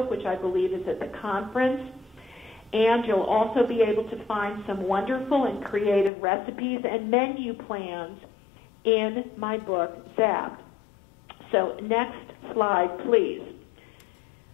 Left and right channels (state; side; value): drops out; right; at 6.1 s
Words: which I believe is at the conference. And you'll also be able to find some wonderful and creative recipes and menu plans in my book, Zapped. So next slide, please.